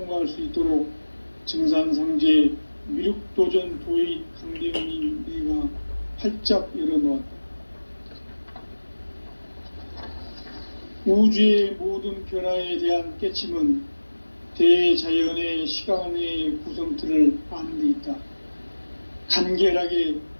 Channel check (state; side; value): inverted; both; correlation -1.00